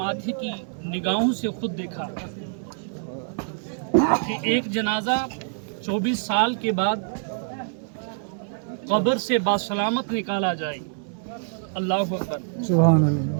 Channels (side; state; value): left; silent; digital silence